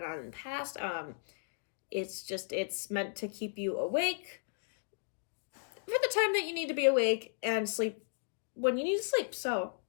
on in the past. It's meant to keep you awake for the time that you need to be awake and sleep when you need to sleep. So,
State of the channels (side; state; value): right; silent; digital silence